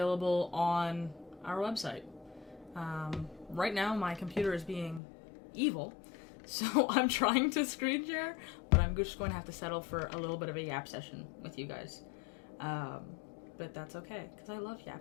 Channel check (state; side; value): drops out; right; at 5.0 s